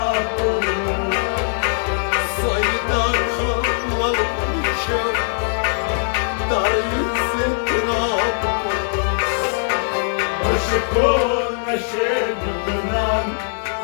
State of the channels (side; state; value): right; silent; digital silence